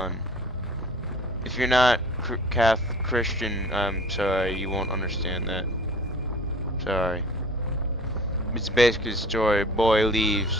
If you're not Catholic Christian, I'm sorry, you won't understand that. Sorry. It's basically the story. Boy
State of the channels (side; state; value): both; normal; correlation 0.46